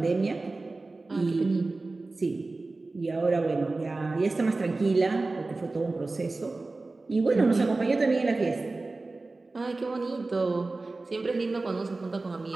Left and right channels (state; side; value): quieter; left; 3.4 dB